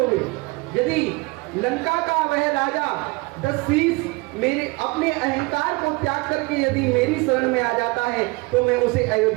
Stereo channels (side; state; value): left; quieter; 25.9 dB